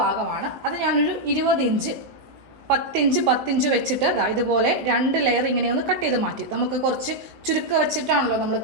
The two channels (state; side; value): late; left; 19 ms